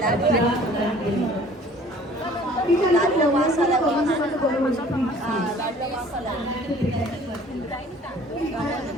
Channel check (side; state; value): both; normal; correlation 0.52